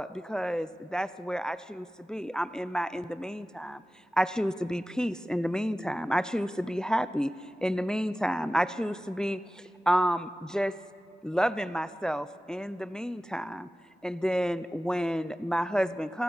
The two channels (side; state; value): both; normal; correlation 0.96